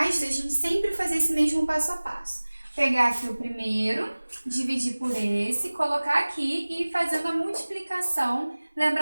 a gente sempre fazer esse mesmo passo a passo. Pegar aqui o primeiro, dividir por esse, colocar aqui e ir fazendo a multiplicação,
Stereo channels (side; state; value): both; inverted; correlation -1.00